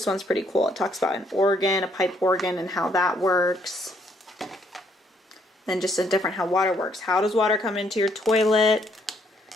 one's pretty cool. It talks about an organ, a pipe organ, and how that works. Then just a different how water works. How does water come into your toilet?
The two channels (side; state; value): both; normal; correlation 0.69